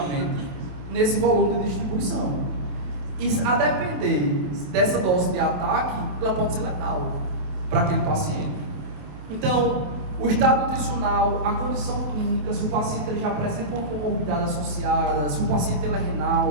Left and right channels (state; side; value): late; left; 27 ms